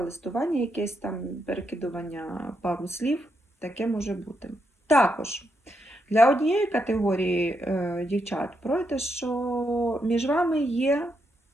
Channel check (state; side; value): normal; both; correlation 0.81